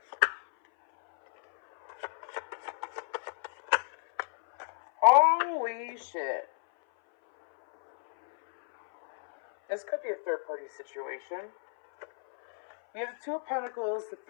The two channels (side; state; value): right; silent; 57 dB below the other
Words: Holy shit. This could be a third-party situation. We have the Two of Pentacles.